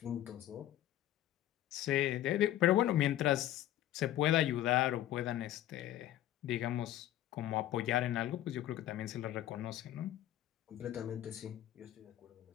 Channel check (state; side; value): quieter; right; 13.1 dB